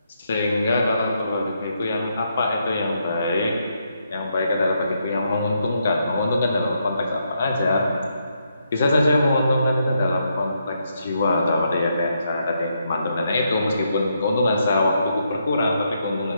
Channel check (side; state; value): both; inverted; correlation -0.78